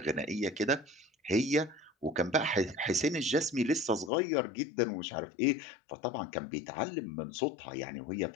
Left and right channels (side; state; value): right; drops out; at 4.1 s